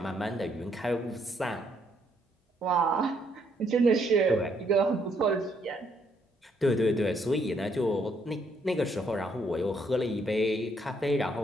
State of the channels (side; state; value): both; normal; correlation 0.71